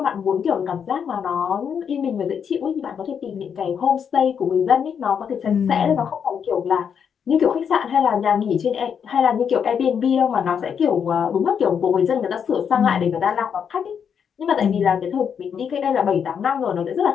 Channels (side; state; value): right; quieter; 7.4 dB